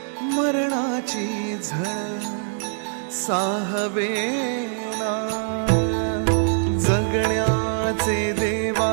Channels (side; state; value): left; silent; digital silence